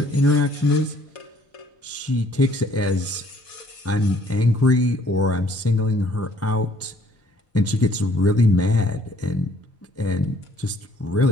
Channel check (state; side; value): normal; both; correlation 0.61